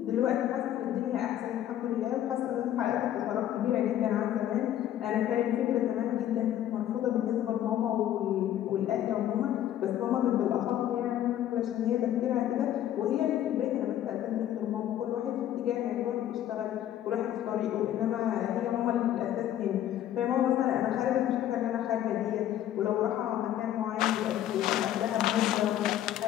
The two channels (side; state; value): right; quieter; 11.7 dB